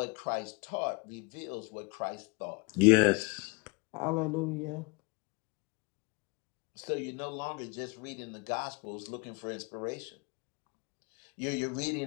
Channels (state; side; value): quieter; right; 29.6 dB